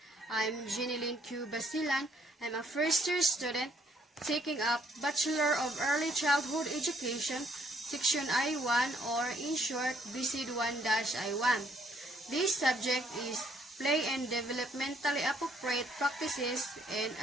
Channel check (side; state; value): both; normal; correlation 0.67